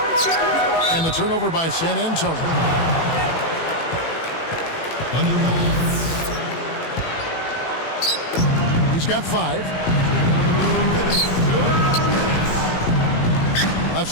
And the turnover by San Antonio. He's got 5. Left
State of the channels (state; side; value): late; right; 18 ms